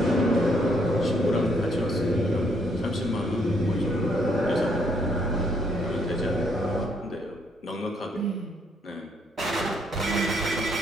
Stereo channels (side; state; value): both; normal; correlation 0.70